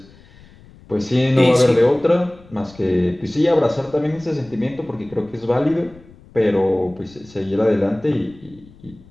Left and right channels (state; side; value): noise; left; rumble, 24 dB below the sound